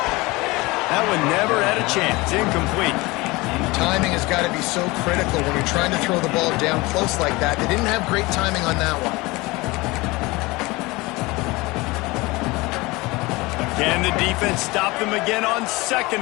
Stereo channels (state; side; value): quieter; right; 22.6 dB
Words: That one never had a chance. Incomplete. Timing has got to be so critical when you're trying to throw the ball down close like that. They didn't have great timing on that one. Can the defense stop them again on 2nd